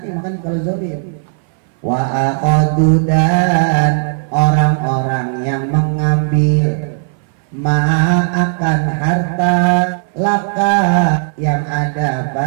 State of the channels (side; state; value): left; silent; 62 dB below the other